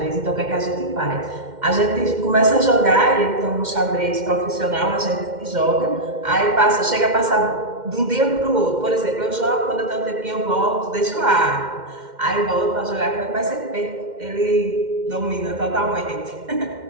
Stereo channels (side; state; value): left; late; 2.1 ms